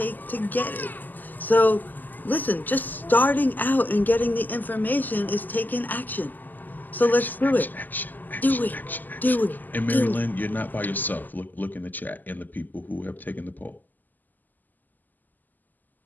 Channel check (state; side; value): late; right; 0.085 ms